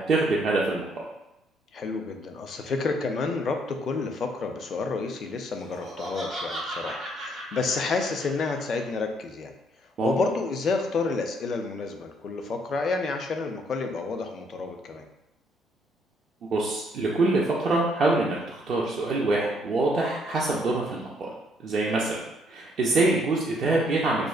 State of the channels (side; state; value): both; normal; correlation 0.68